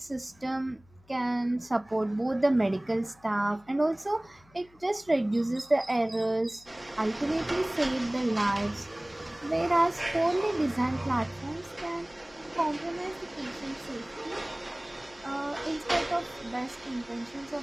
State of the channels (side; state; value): left; noise; hum, 29 dB below the sound